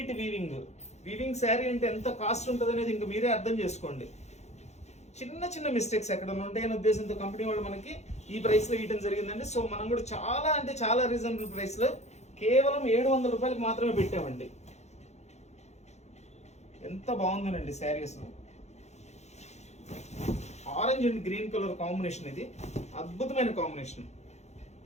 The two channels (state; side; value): late; right; 0.32 ms